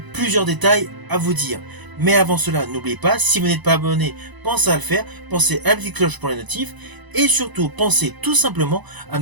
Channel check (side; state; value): left; late; 1.0 ms